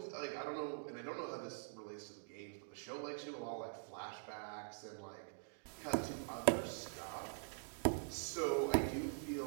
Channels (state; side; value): silent; left; digital silence